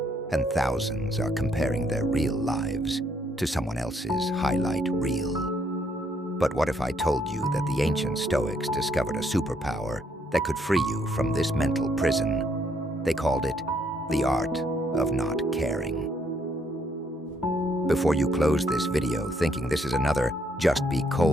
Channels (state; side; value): normal; both; correlation 0.70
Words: And thousands are comparing their real lives to someone else's highlight reel. But what if I told you that the ancient Stoics discovered a superpower that could free you from this mental prison? They called it the art of not caring. Before you close this video thinking this is another just be